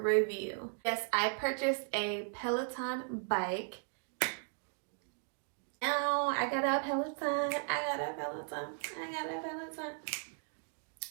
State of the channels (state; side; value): silent; left; 53 dB below the other